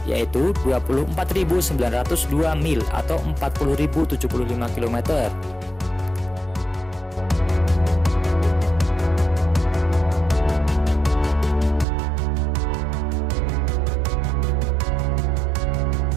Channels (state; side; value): drops out; left; at 11.9 s